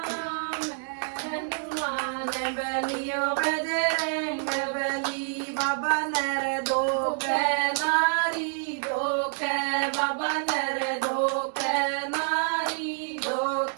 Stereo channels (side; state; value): left; silent; digital silence